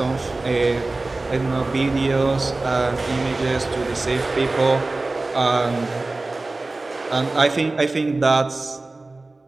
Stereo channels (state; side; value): quieter; left; 3.2 dB